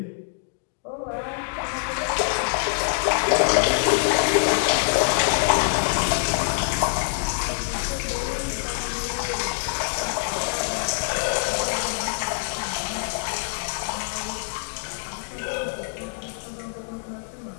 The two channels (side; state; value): right; silent; digital silence